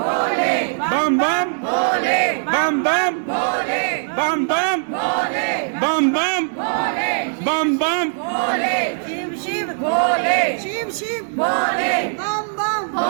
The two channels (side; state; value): left; silent; 64 dB below the other